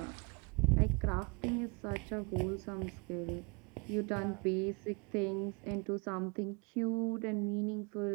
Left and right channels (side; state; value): left; quieter; 31.1 dB